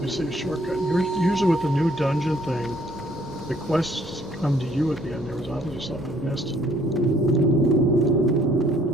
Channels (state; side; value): normal; both; correlation 0.63